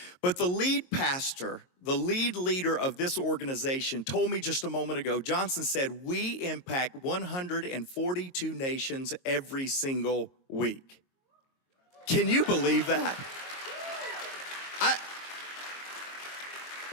But the lead pastor, the lead leader of this organization told me just a moment ago, Johnson said, we impact 142 nations every single week. Can you believe that?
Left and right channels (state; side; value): late; right; 22 ms